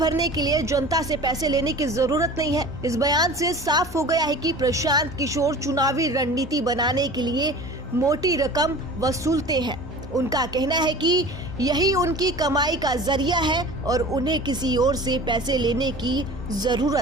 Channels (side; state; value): both; normal; correlation 0.40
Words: के लिए जनता से पैसे लेने की जरूरत नहीं है। इस बयान से साफ हो गया है कि प्रशांत किशोर चुनावी रणनीति बनाने के लिए मोटी रकम वसूलते हैं। उनका कहना है कि यही उनकी कमाई का जरिया है और उन्हें किसी और से पैसे लेने की